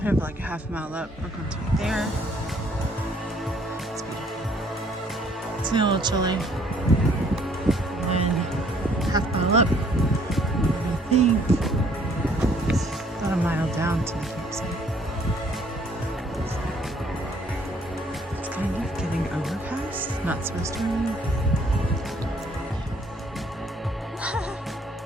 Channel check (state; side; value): normal; both; correlation 0.62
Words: We have like a 1/2 mile up. We're going to be there. It's beautiful. It's a little chilly. And then 1/2 mile up. I think it's about 1 mile down to the campsite. It's kind of getting overcast. Not supposed to rain.